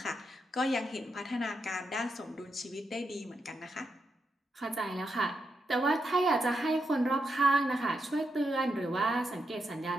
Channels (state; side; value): normal; both; correlation 0.84